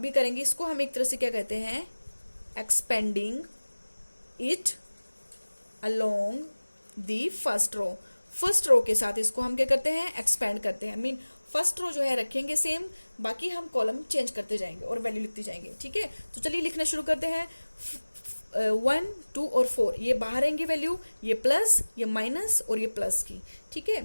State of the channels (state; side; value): inverted; both; correlation -1.00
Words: करेंगे इसको हम एक तरह से क्या कहते हैं, expanding it along the first row. First row के साथ इसको हम क्या करते हैं, एक्सपेंड करते हैं। मीन फर्स्ट रो जो है रखेंगे सेम, बाकी हम कॉलम चेंज करते जाएंगे और वैल्यू लिखते जाएंगे, ठीक है। तो चलिए लिखना शुरू करते हैं। 1 2 और 4 ये बाहर आएंगे वैल्यू, ये प्लस ये माइनस और ये प्लस की, ठीक है।